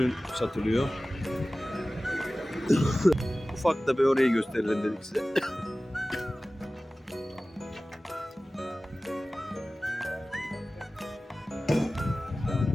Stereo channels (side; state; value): both; normal; correlation 0.97